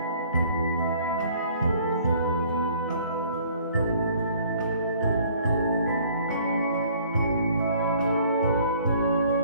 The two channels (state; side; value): inverted; both; correlation -0.57